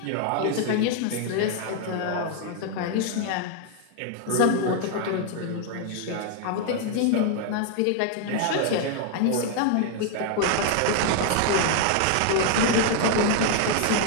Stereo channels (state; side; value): different; both; correlation 0.01